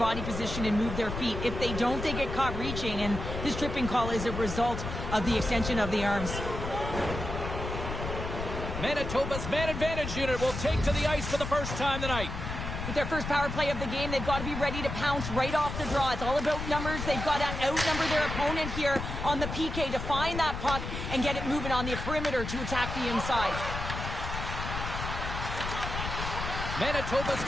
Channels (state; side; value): noise; left; rumble, 5 dB below the sound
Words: position and move their feet. If they don't, they get caught reaching, and this tripping call is a result of the extension of the arms. Manitoba's man advantage unit will take to the ice for the first time tonight. With their first power play of the game, they've got to be ready to pounce right off the draw. It's all about numbers. They've got to outnumber their opponent here on the PK to find that puck and get it moving on the perimeter to attack the inside. Manitoba's